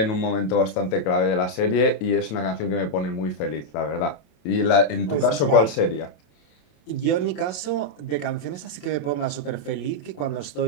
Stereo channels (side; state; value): right; late; 27 ms